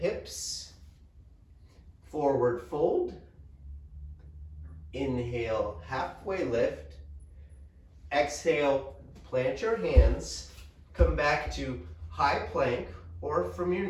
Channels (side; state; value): both; identical; correlation 1.00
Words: Forward fold. Inhale, halfway lift. Exhale, plant your hands. Come back to high plank or from your